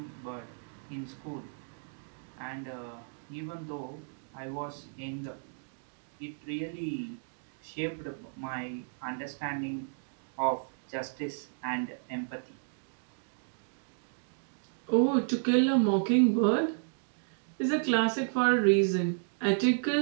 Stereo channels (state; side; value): silent; left; digital silence